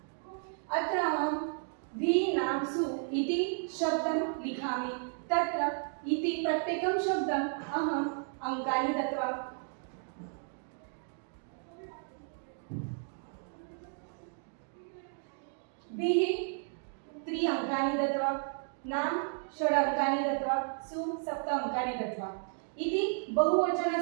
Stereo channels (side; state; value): left; silent; 56 dB below the other